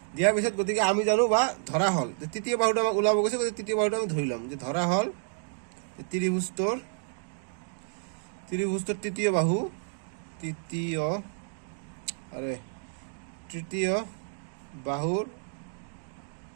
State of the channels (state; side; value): silent; left; 58 dB below the other